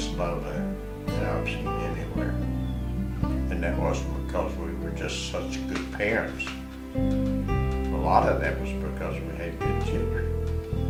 love that I've seen anywhere. And that wasn't because we were just such good parents. A lot of that was because we had good children.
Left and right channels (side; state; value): both; identical; correlation 1.00